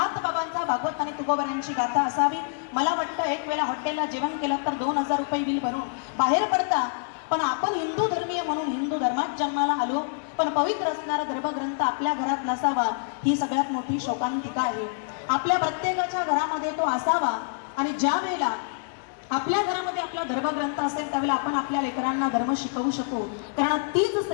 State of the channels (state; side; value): silent; right; digital silence